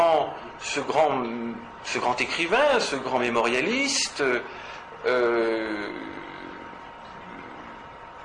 écrivain, ce grand mémorialiste,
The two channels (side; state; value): both; identical; correlation 1.00